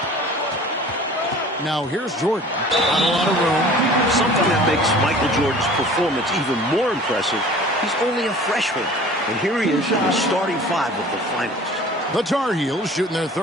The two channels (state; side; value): normal; both; correlation 0.45